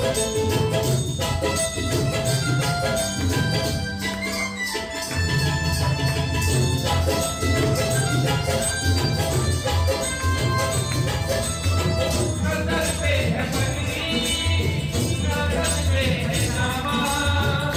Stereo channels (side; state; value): both; identical; correlation 1.00